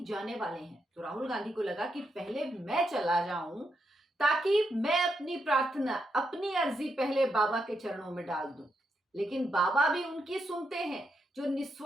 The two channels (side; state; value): both; normal; correlation 0.82